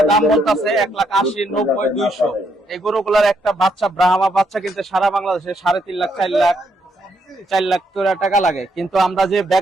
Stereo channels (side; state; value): both; normal; correlation 0.75